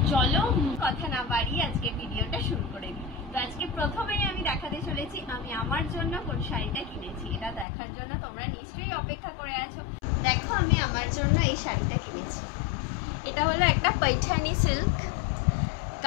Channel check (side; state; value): right; drops out; at 7.7 s